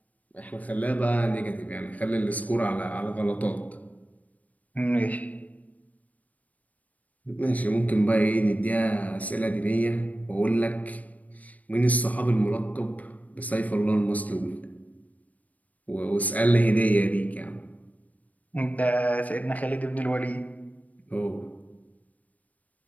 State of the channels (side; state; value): right; late; 0.072 ms